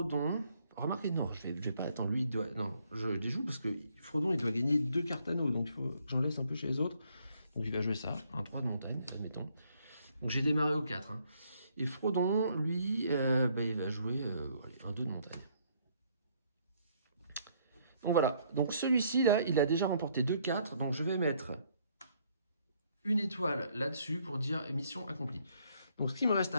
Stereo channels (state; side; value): inverted; both; correlation -0.68